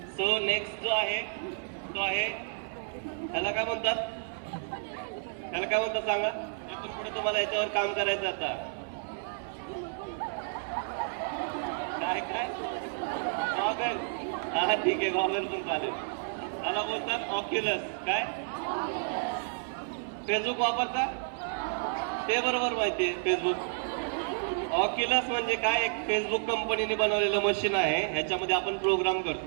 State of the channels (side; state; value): left; silent; 57 dB below the other